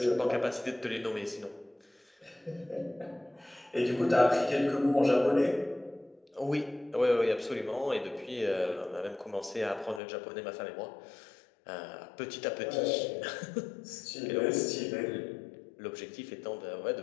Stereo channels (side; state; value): right; drops out; at 10.0 s